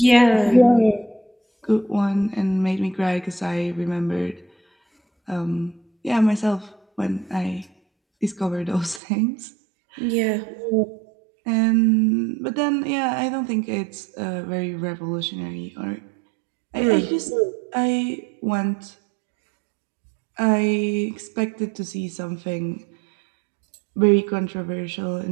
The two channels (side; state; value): left; drops out; at 9.0 s